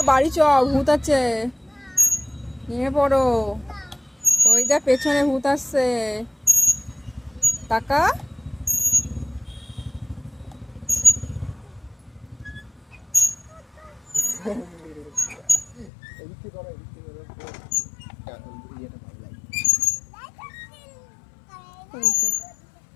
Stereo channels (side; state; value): right; drops out; at 15.9 s